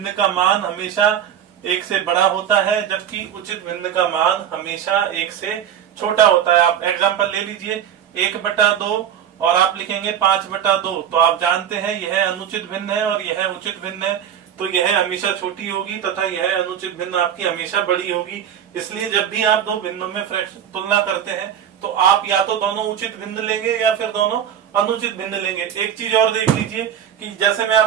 का मान हमेशा 1 से बड़ा होता है, जबकि उचित भिन्न का मान हमेशा 1 से छोटा होता है। आप एग्जाम्पल ले लीजिए 1/2 और आप लिखेंगे 5/2, तो आप जानते हैं यह अनुचित भिन्न है और यह उचित भिन्न है, तो यह हमेशा छोटी होगी तथा यह अनुचित भिन्न आपकी हमेशा बड़ी होगी। इसलिए जब भी आप 2 भिन्नों में तुलना करते हैं तो आप या तो दोनों उचित भिन्न लेंगे या फिर दोनों अनुचित भिन्न लेंगे। एक चीज और देख लीजिए कि जैसे मैं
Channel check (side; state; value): left; quieter; 9.4 dB